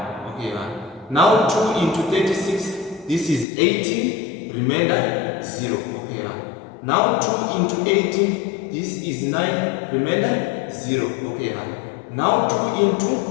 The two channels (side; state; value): right; drops out; at 3.5 s